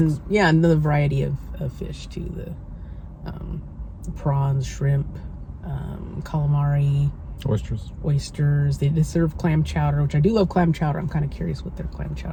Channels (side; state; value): both; identical; correlation 1.00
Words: sticks. yeah, and the variety of fish too. The prawns, shrimp, calamari, oysters. They did serve clam chowder, which I do love clam chowder. I'm kind of curious what their clam